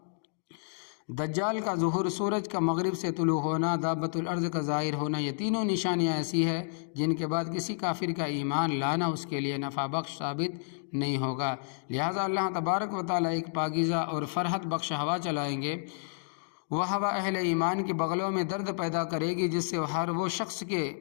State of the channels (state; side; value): silent; right; digital silence